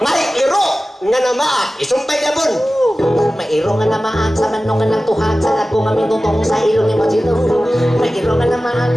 iro nga namaa isumpay gabon. May iro nga namaan sa manok nga nagtuhak sa lagong nga mitutong sa ilong ni Mochitong. May iro nga namaan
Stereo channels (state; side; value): normal; both; correlation 0.96